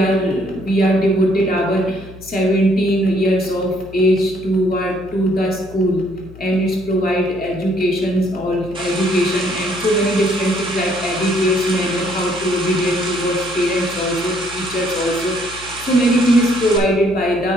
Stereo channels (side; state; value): left; noise; hum, 18 dB below the sound